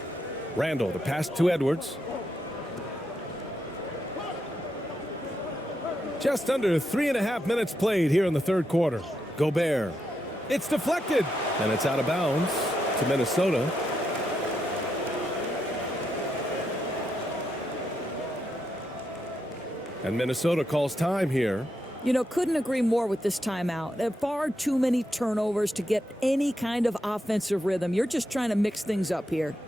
Randall, the pass to Edwards. Just under 3.5 minutes played here in the third quarter. Gobert. It's deflected, and it's out of bounds to Minnesota. And Minnesota calls time here. You know, couldn't agree more with this timeout. There are far too many turnovers to get any kind of offensive rhythm. You're just trying to mix things up here.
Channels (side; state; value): both; normal; correlation 0.82